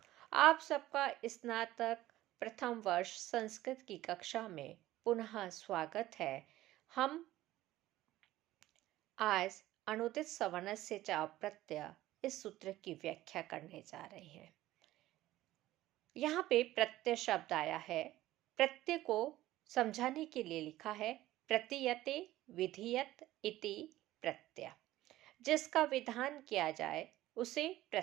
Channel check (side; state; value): left; quieter; 15.6 dB